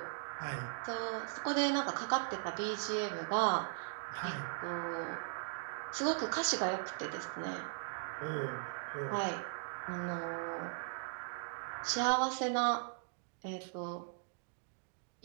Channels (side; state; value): left; silent; digital silence